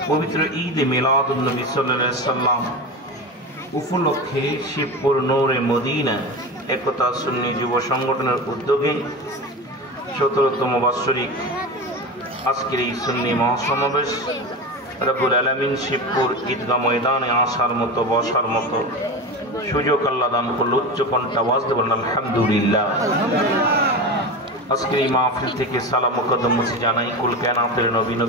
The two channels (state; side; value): normal; both; correlation 0.24